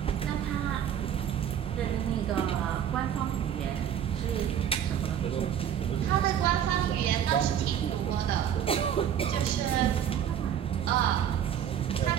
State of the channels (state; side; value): quieter; left; 9.4 dB